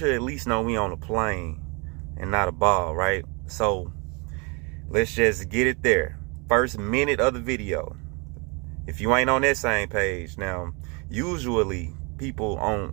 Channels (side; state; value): left; quieter; 31.5 dB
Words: at least know we on a plane and not a ball, right? So let's just get it there. First minute of the video. If you ain't on that same page, now usually people